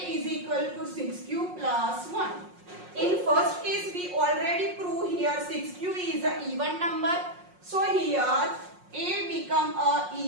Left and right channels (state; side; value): late; left; 5.5 ms